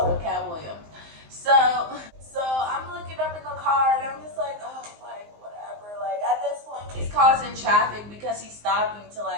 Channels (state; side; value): late; left; 19 ms